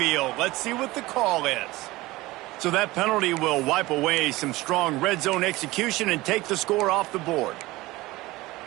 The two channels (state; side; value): quieter; left; 19.6 dB